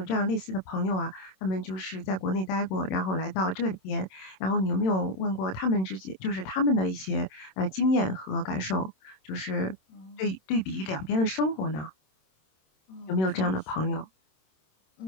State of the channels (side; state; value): right; late; 27 ms